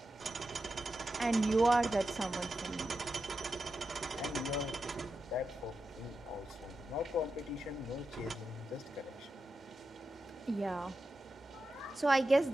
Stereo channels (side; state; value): both; normal; correlation 0.89